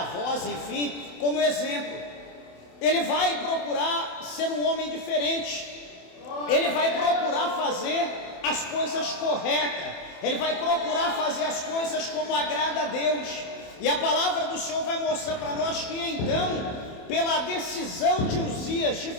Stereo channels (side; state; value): right; late; 27 ms